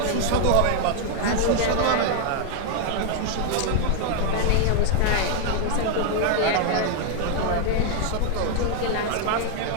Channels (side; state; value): both; different; correlation 0.00